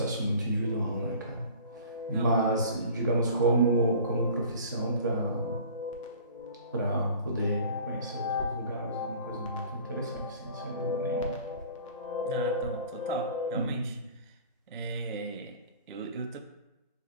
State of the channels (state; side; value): inverted; both; correlation -0.45